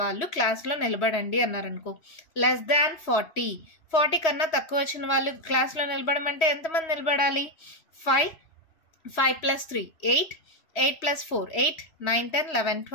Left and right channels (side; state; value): right; late; 3.1 ms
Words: వాళ్ళు క్లాస్లో నిలబడండి అన్నారనుకో. లెస్ దాన్ 40 కన్నా తక్కువ వచ్చిన వాళ్ళు క్లాస్లో నిలబడమంటే ఎంతమంది నిలబడాలి? 5 + 3 8 8 + 4 8 9 10 11